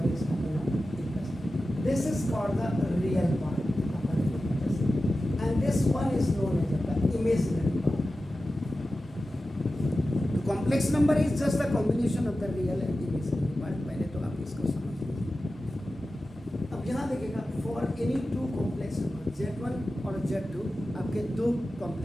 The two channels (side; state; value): both; normal; correlation 0.94